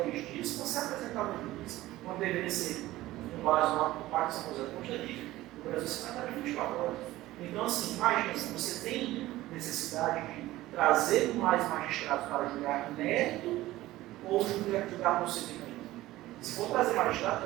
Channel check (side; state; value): left; quieter; 16.6 dB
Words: dias para ser apresentado ao juiz, quando deveria ser com base no pacto de São José do Costa Rica, o Brasil se trata de 24 horas. Então, assim, imagina, se você tem necessidade de trazer mais magistrados para julgar mérito ou julgar procedimento. Se for trazer magistrado,